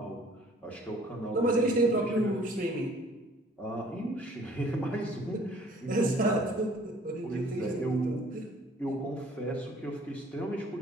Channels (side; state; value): both; normal; correlation 0.55